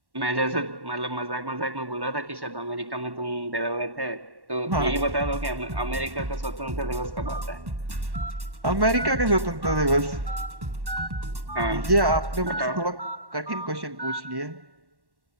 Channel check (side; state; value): left; late; 1.1 ms